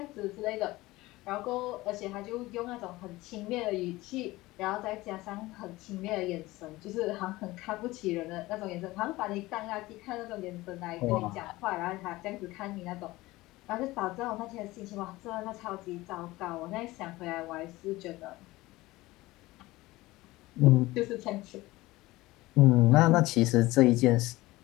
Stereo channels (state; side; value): quieter; right; 19.2 dB